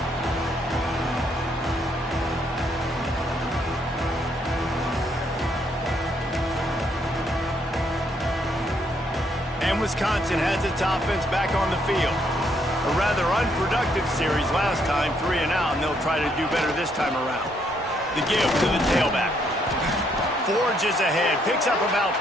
And Wisconsin has its offense back on the field. A rather unproductive series last time, 3 and out, and they'll try to do better this time around. The give to the tailback. Forges ahead, picks up about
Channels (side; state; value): both; normal; correlation 0.72